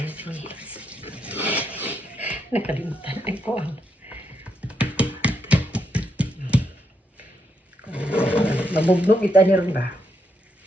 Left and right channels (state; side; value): normal; both; correlation 0.80